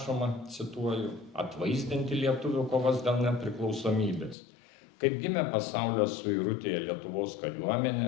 cituoju, atvaizdinti lietuvių kovas dėl nepriklausomybės. Kaip gimė pasaulio suirutėje Lietuvos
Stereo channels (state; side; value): drops out; right; at 4.4 s